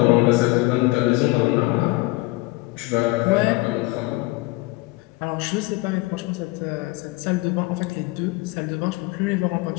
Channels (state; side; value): quieter; right; 21.7 dB